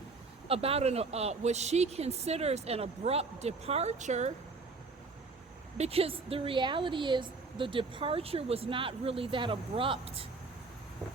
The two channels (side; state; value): left; quieter; 4.0 dB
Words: about what she considers an abrupt departure, because the reality is the departure was not really that abrupt.